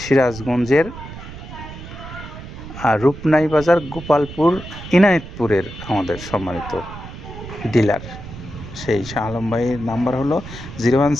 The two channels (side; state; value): right; noise; rumble, 12 dB below the sound